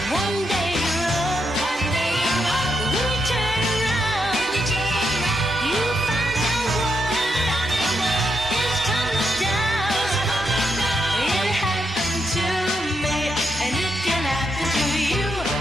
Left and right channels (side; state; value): both; normal; correlation 0.81